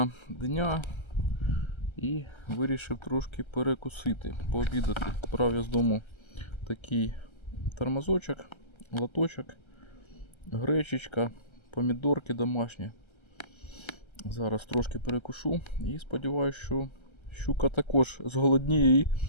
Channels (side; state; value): right; late; 1.3 ms